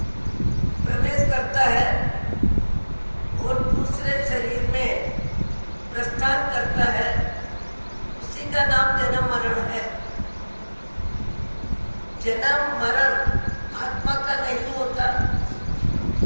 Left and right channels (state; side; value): inverted; both; correlation -1.00